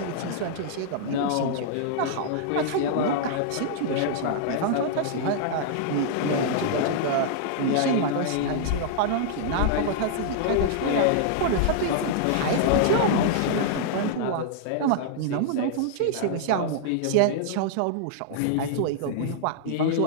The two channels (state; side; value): different; both; correlation -0.01